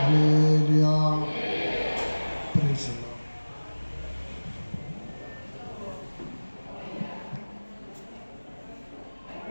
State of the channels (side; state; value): both; inverted; correlation -1.00